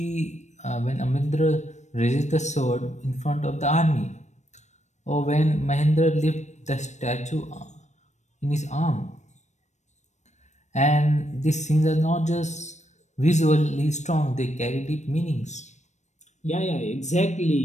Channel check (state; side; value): late; right; 0.34 ms